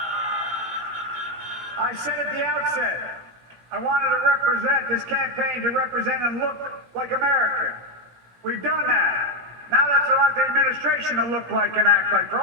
I said at the outset, I wanted to represent this campaign to represent and look like America. We've done that. Now that's what I want the administration to look like and act like. For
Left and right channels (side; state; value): left; late; 17 ms